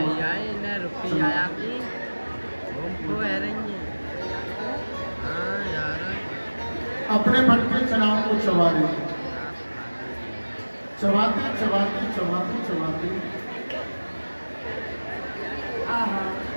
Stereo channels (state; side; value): inverted; both; correlation -1.00